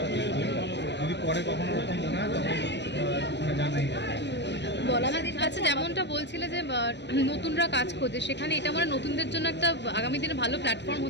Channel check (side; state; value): right; late; 0.51 ms